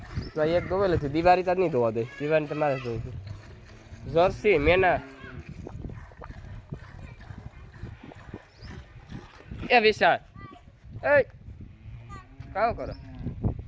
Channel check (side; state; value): both; identical; correlation 1.00